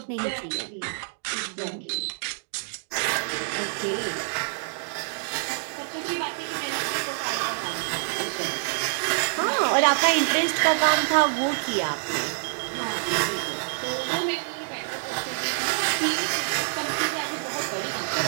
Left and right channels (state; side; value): silent; left; digital silence